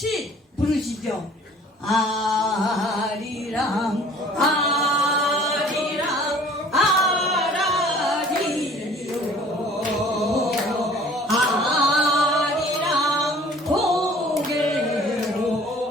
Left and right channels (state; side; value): normal; both; correlation 0.51